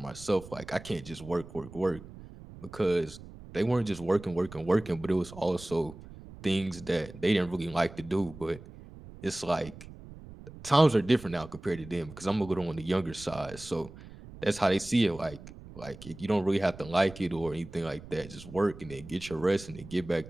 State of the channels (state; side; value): noise; right; rumble, 16 dB below the sound